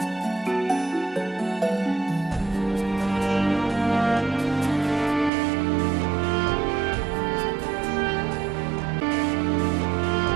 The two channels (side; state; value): left; drops out; at 5.3 s